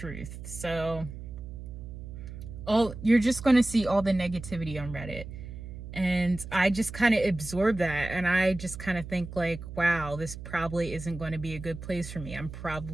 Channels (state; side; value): noise; right; hum, 11 dB below the sound